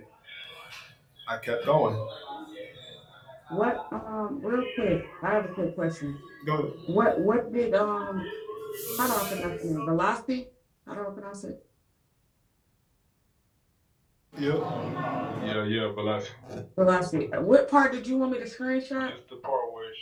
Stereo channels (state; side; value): identical; both; correlation 1.00